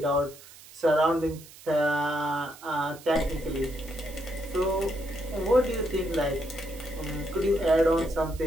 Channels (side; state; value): right; noise; hiss, 20 dB below the sound